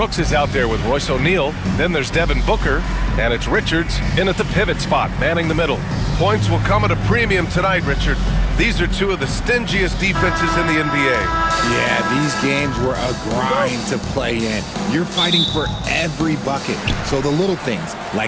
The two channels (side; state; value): both; identical; correlation 1.00